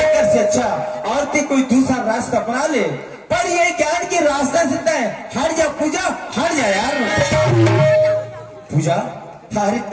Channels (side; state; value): both; identical; correlation 1.00